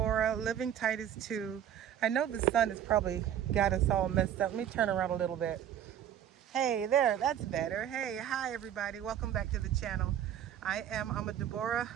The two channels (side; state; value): left; quieter; 10.1 dB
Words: living Titus 2. I know the sun has probably got us all messed up. Let me turn around a little bit. Hey there, that's better. Hey, hi everybody. Welcome back to the channel. I'm a Deborah,